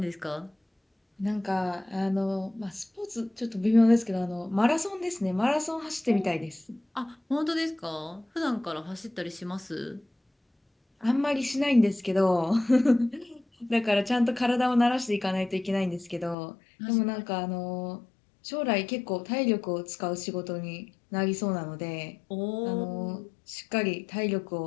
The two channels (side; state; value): right; drops out; at 16.4 s